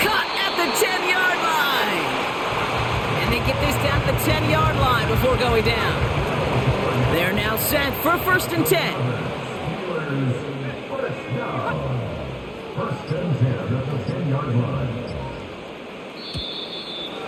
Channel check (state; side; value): identical; both; correlation 1.00